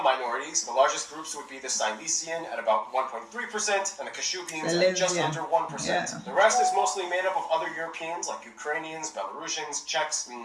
minorities, the largest groups would be the Silesian at about 1.3% and the Kashubians at just under 1%. Yeah. The rest is mostly made up of other Europeans like Ukrainians, Belarusians, Czechs, and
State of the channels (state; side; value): identical; both; correlation 1.00